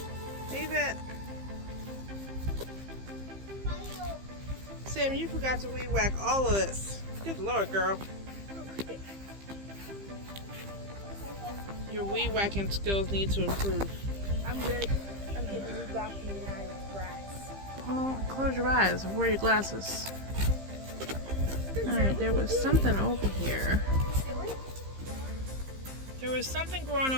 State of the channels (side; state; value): left; late; 15 ms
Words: Leave it. Sam, you forgot to weed whack all of this. Good Lord, girl. Your weed whacking skills need to improve. I'm good. I'm getting weed whacking out of grass. Well, close your eyes. Wear your glasses. Alright, there was something over here. There was something growing